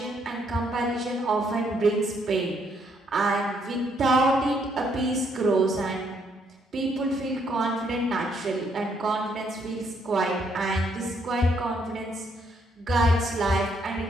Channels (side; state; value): both; normal; correlation 0.72